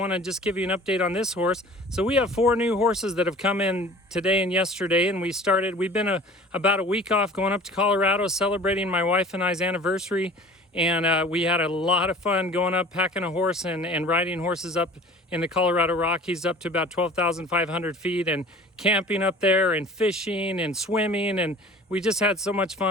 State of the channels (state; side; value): normal; both; correlation 0.44